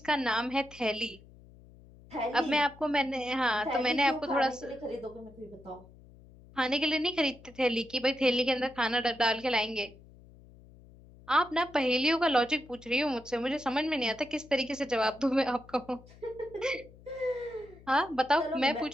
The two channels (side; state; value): left; noise; hum, 23 dB below the sound